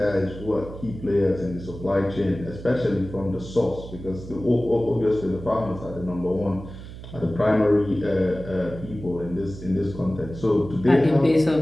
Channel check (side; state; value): right; noise; hum, 13 dB below the sound